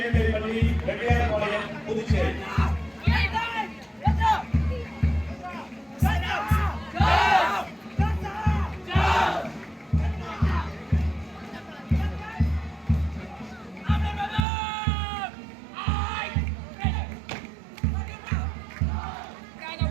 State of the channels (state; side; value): drops out; left; at 14.5 s